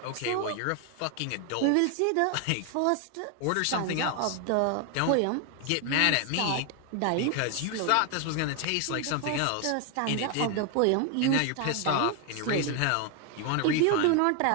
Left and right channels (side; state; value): both; different; correlation 0.01